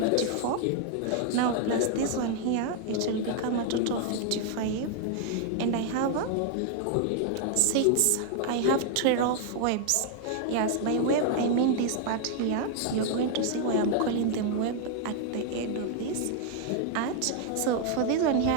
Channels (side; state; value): both; different; correlation 0.00